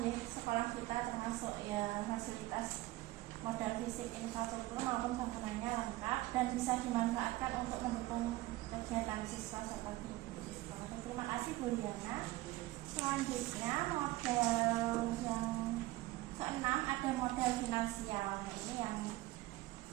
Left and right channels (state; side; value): quieter; left; 18.2 dB